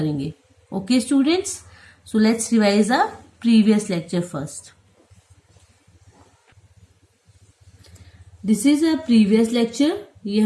Okay students, so let's revise our previous lecture first. This is a previous lecture. ये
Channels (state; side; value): identical; both; correlation 1.00